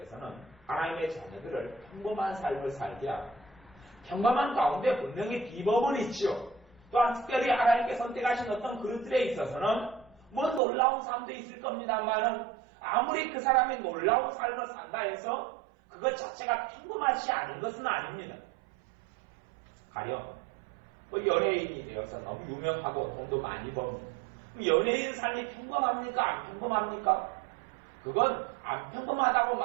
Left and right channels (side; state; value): left; drops out; at 10.6 s